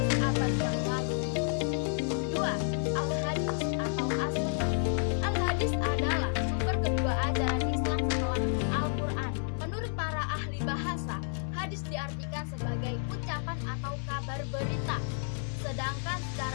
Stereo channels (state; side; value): silent; right; digital silence